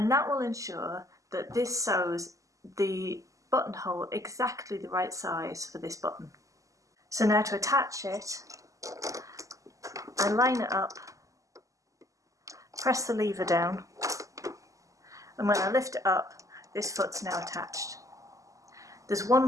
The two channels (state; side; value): late; left; 0.16 ms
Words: that will ensure that this sews the buttonhole exactly the right size for this button. So now to attach it, I line it up, press the lever down, and when I lift it up, this foot's now attached. There's one